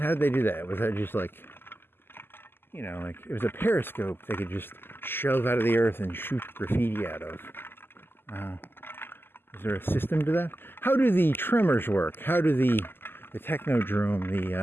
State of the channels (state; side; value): late; right; 0.10 ms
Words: did they do that? Was that just like, you know, like it was a periscope they could just shove out of the earth and shoot graffiti out of? Is there a system to that? How do the tremors work? How do the technodrome,